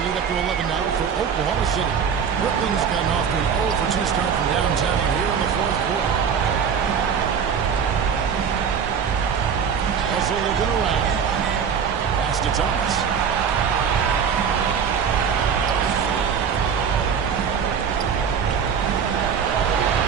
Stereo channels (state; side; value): quieter; left; 7.0 dB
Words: lead up to 11 now for Oklahoma City. Brooklyn's gotten off to an 0-for-2 start from downtown here in the fourth quarter. Also looking around. Pass to Thomas.